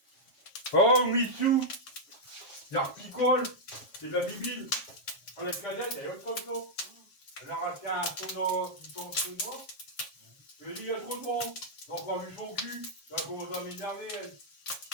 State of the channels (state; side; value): late; right; 7.5 ms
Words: Oh, Mitsou. Il y a un picole. C'est de la bibine. Dans la cadette, il y a autre chose. Elle a racheté un son chinois. Je lui ai dit, il y a trop de monde. Donc, on a vu son cul. Elle a commencé à m'énerver, elle.